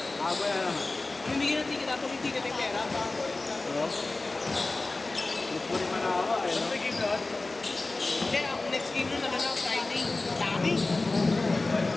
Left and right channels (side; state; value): right; quieter; 3.3 dB